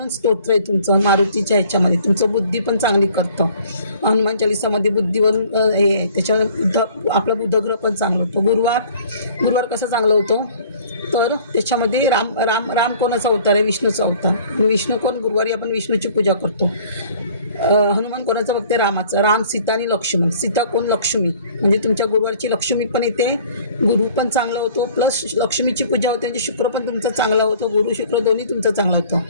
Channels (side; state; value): both; inverted; correlation -0.53